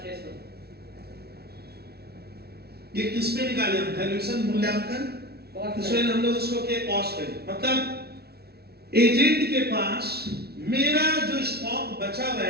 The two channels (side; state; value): left; late; 0.46 ms